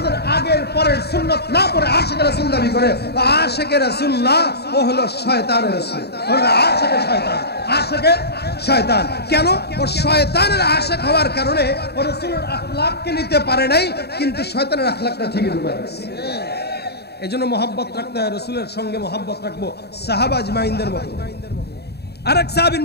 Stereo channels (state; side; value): late; right; 0.47 ms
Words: আগের পরের সুন্নাত না পড়ে আশিকে রাসূল দাবি করে, আশিকে রাসূল না, ও হলো শয়তানের রাসূল, হলো আশিকে শয়তান, আশিকে শয়তান। কেন? ও শয়তানের আশিক হওয়ার কারণে ও রাসূলের আখলাককে নিতে পারে নাই, কিন্তু শয়তানের আখলাকটা ঠিকই ঢুকে গেছে। এজন্য মহব্বত রাখতে হয়, রাসূলের সঙ্গে মহব্বত রাখবো সাহাবা আজমাইনদের মতো। আরেক সাহাবীর